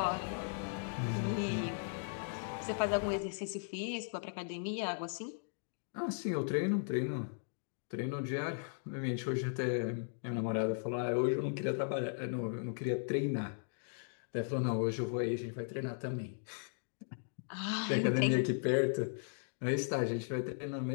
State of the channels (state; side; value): silent; right; digital silence